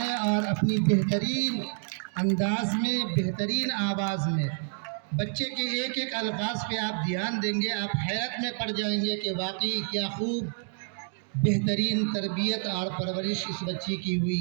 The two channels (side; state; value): left; silent; digital silence